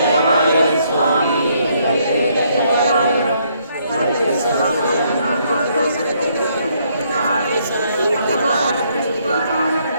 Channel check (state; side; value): inverted; both; correlation -0.70